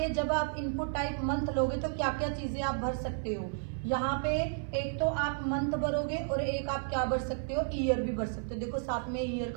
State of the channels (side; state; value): left; silent; 56 dB below the other